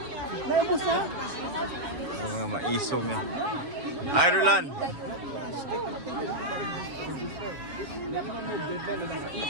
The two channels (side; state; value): left; late; 7.1 ms